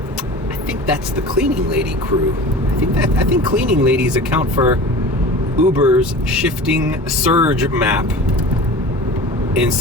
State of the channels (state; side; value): normal; both; correlation 0.37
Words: I think that's the cleaning lady crew. I think cleaning ladies account for Uber's shifting surge map in